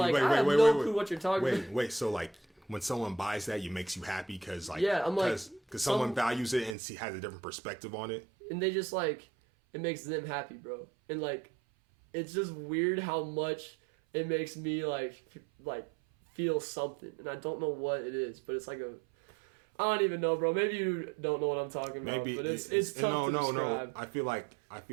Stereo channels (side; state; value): left; drops out; at 6.8 s